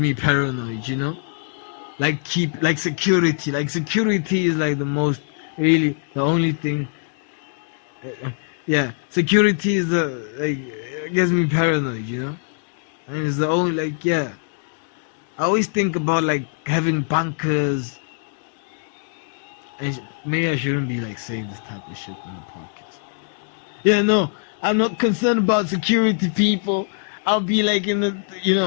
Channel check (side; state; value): right; silent; digital silence